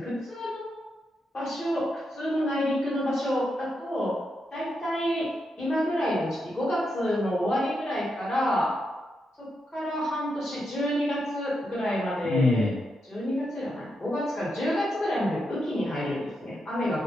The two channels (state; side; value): normal; both; correlation 0.84